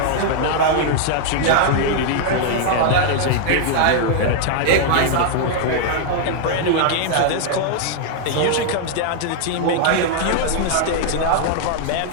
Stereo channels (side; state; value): both; different; correlation -0.01